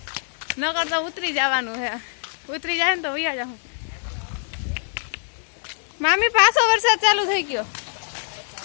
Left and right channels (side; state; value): right; silent; digital silence